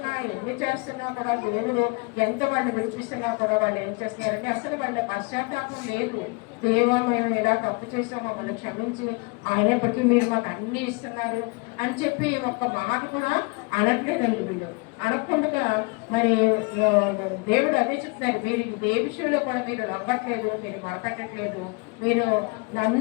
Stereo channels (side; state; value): right; quieter; 28.3 dB